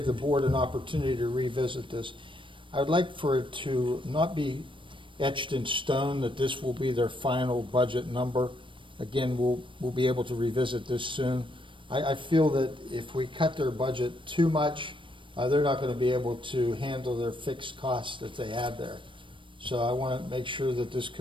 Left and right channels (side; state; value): left; late; 0.25 ms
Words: the board an opportunity to revisit this. I would like for it to not be etched in stone that this will be their final budget number. Again, we'll be able to revisit this soon. I feel that if we cut their budget too much, they're not going to be able to handle their fixed costs that they have there. So I want to make sure that this